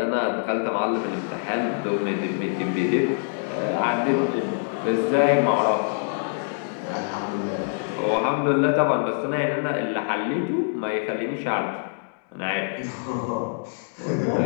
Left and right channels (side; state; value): right; silent; digital silence